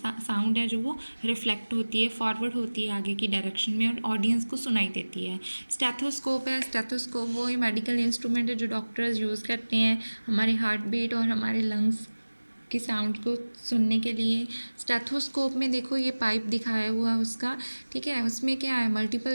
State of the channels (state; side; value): inverted; both; correlation -1.00